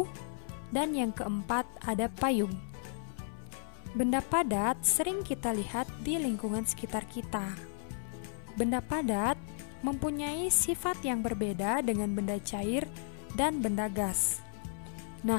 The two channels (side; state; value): right; silent; 55 dB below the other